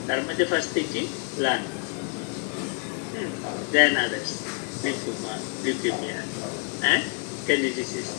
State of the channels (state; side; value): quieter; right; 38.1 dB